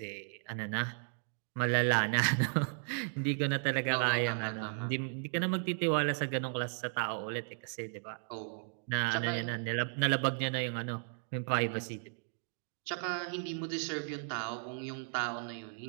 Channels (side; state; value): left; silent; 54 dB below the other